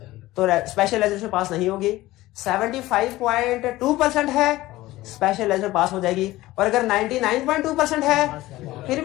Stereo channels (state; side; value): quieter; right; 17.4 dB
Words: तो स्पेशलाइजेशन पास नहीं होगी। 75.2% है, स्पेशलाइजेशन पास हो जाएगी। और अगर 99.2% है फिर